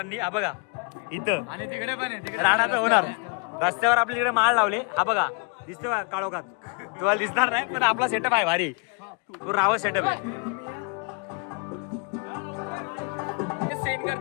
हा बघा इथं आणि तिकडे पण राडा तर होणार. रस्त्यावर आपल्या तिकडे माळ लावले. हा बघा दिसतो का काळोखात तुम्हाला दिसणार नाही पण आपला सेटअप आहे भारी. तो रावत सेटअप आहे.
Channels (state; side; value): quieter; right; 33.5 dB